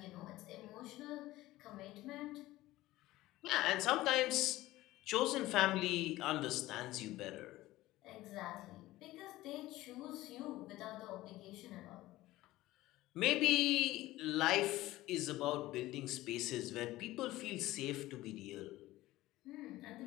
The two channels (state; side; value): quieter; right; 17.1 dB